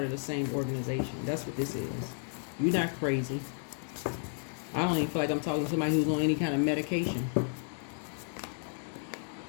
of the same organization. That's what this is. You're not crazy. I don't even feel like I'm talking to somebody who's on any kind of medication.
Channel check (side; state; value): right; silent; 56 dB below the other